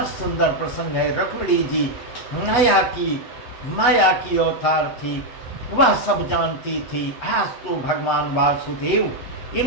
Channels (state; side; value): late; right; 8.1 ms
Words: सुंदर प्रसंग है। रुक्मिणी जी माया की अवतार थी, वह सब जानती थी। आज तो भगवान वासुदेव